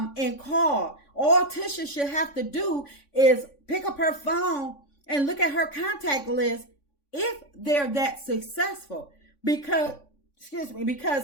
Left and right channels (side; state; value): right; late; 3.5 ms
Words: call. All Tisha should have to do is pick up her phone and look at her contact list if they're that successful. Because